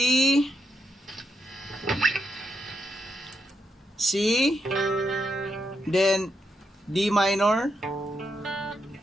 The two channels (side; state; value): both; normal; correlation 0.82